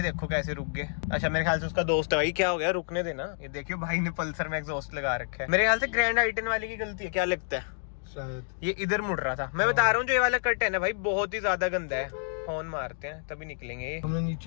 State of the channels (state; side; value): silent; right; digital silence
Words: देखो कैसे रुक गए। अच्छा मेरे ख्याल से उसका दोस्त है भाई। क्या हो गया, रुकने देना। ये देखियो भाई ने पल्सर में एग्जॉस्ट लगा रखा है। मेरे ख्याल से ग्रैंड आई-10 वाले की गलती है, क्या लगता है? शायद ये इधर मुड़ रहा था। मैं बता रहा हूँ जो ये वाला कट है ना भाई बहुत ही ज्यादा गंदा है। हॉर्न मारते हैं तभी निकलेंगे ये। हमने